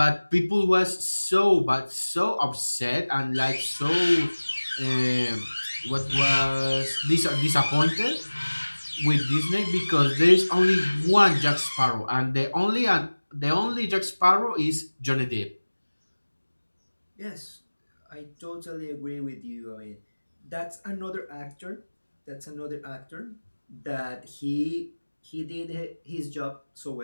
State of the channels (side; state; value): both; inverted; correlation -1.00